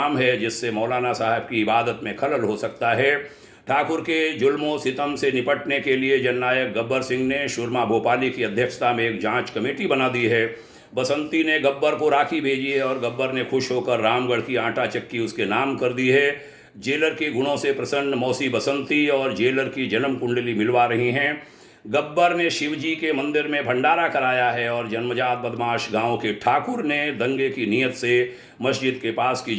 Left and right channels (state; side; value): identical; both; correlation 1.00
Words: है, जिससे मौलाना साहब की इबादत में खलल हो सकता है। ठाकुर के जुल्मों सितम से निपटने के लिए जननायक गब्बर सिंह ने सुरमा भोपाली की अध्यक्षता में एक जांच कमेटी बना दी है। बसंती ने गब्बर को राखी भेजी है और गब्बर ने खुश होकर रामगढ़ की आटा चक्की उसके नाम कर दी है। जेलर के गुणों से प्रसन्न मौसी बसंती और जेलर की जन्म कुंडली मिलवा रही हैं। गब्बर ने शिवजी के मंदिर में भंडारा कराया है और जन्मजात बदमाश गांव के ठाकुर ने दंगे की नीयत से मस्जिद के पास की